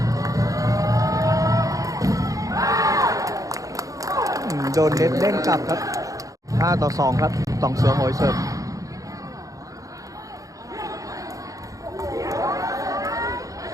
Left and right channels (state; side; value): late; left; 0.17 ms